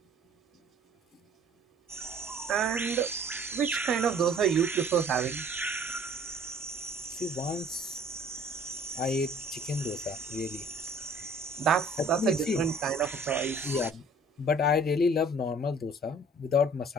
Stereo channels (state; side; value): normal; both; correlation 0.53